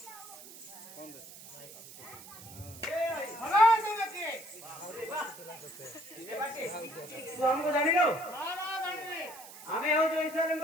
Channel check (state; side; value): noise; right; hiss, 16 dB below the sound